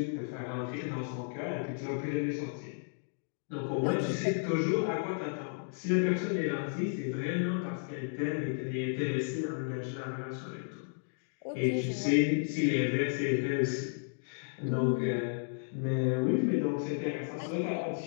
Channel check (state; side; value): silent; right; digital silence